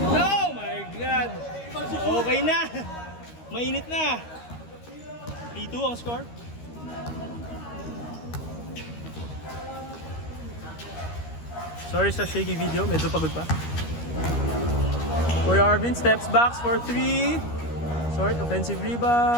Oh my God! Okay na! Mainit na! 3-2 ang score. Sorry sa shaky video, medyo pagod pa. Kuya Arvin steps back for 3. Short offensive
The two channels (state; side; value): late; right; 13 ms